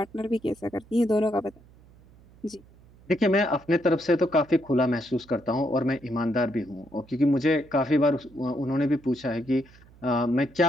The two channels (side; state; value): right; noise; hum, 26 dB below the sound